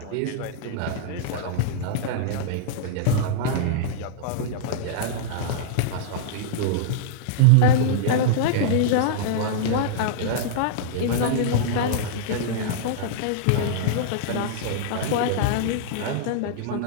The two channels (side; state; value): both; different; correlation -0.02